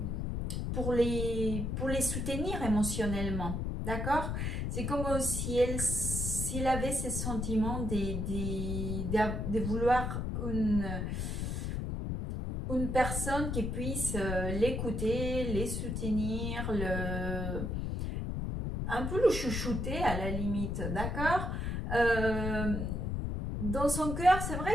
pour les soutenir émotionnellement, d'accord? C'est comme si s'il avait ces sentiments de vouloir une personne qui puisse l'écouter, les soutenir, un peu le chouchouter à la limite, d'accord? Dans son cœur, c'est vrai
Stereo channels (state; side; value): noise; left; rumble, 2 dB below the sound